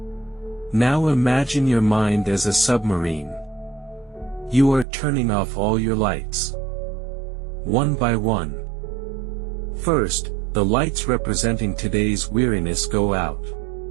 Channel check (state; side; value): drops out; left; at 4.9 s